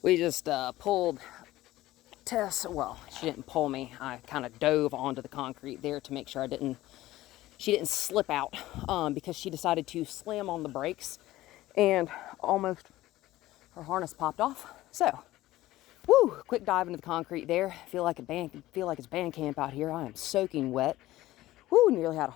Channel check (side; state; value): right; quieter; 16.3 dB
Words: just pulled Tess. Well, she didn't pull me. I kind of dove onto the concrete there to make sure she didn't slip out, because she decided to slam on the brakes and almost her harness popped off. So, woo, quick dive into the concrete there. Feel like it's band camp out here. I am soaking wet. Woo, nearly had a